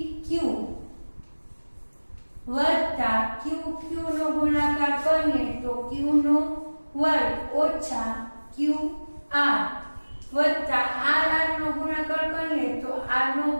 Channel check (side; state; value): both; inverted; correlation -1.00